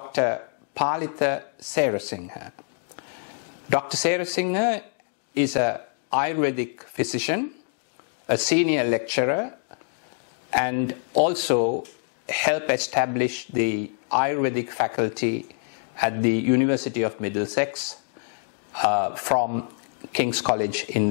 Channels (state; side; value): silent; right; 61 dB below the other